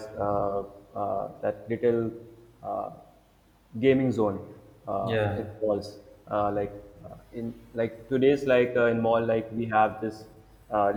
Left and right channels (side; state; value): both; identical; correlation 1.00